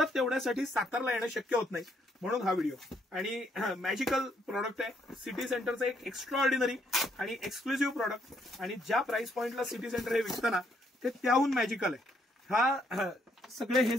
तेवढ्यासाठी सातारला येणं शक्य होत नाही. म्हणून हा व्हिडिओ आणि मॅजिकल प्रॉडक्ट आहे. सिटी सेंटरचं एक एक्स्ट्रा ऑर्डिनरी आणि एक्सक्लुझिव्ह प्रॉडक्ट आणि ज्या प्राइस पॉइंटला सिटी सेंटर हे विकताना ते त्याहून मॅजिकल आहे. हा सगळे हे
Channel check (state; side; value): normal; both; correlation 0.71